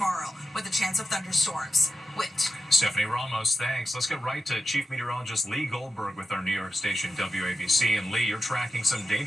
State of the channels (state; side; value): normal; both; correlation 0.89